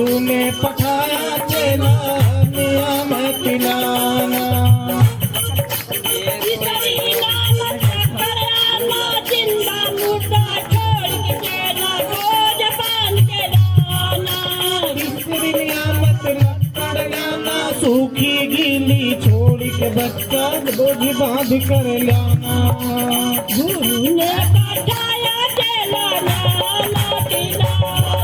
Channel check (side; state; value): both; identical; correlation 1.00